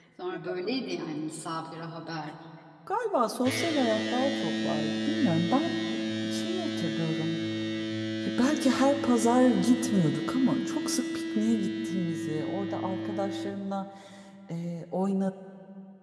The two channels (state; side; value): identical; both; correlation 1.00